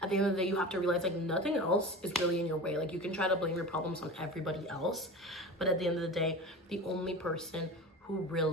at the end of the day, you have to realize, like, nothing else is really in your way. Like, you can try to blame your problems on everybody else, but at the end of the day, the only person who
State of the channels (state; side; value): normal; both; correlation 0.32